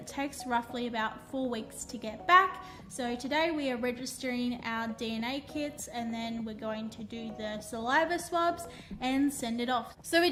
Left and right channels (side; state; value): both; identical; correlation 1.00